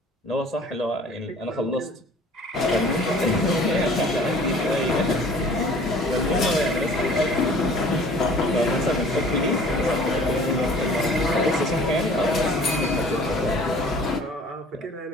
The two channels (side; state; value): both; normal; correlation 0.50